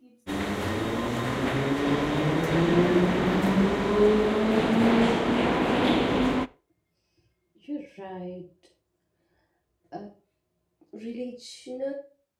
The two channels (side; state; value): both; identical; correlation 1.00